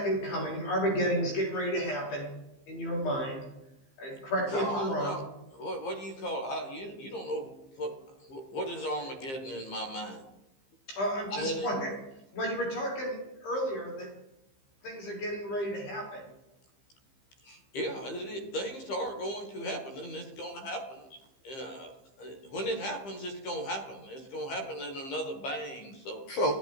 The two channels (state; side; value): late; right; 15 ms